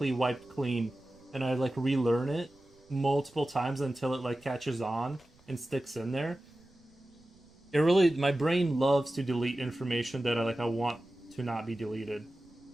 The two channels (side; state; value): right; noise; rumble, 30 dB below the sound